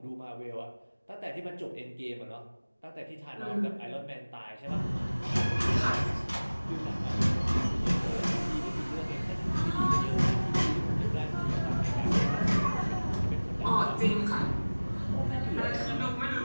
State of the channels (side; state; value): both; inverted; correlation -1.00